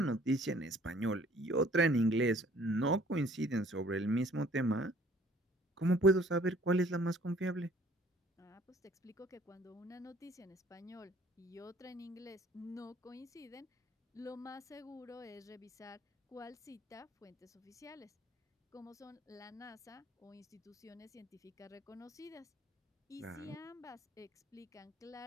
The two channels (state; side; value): normal; both; correlation 0.56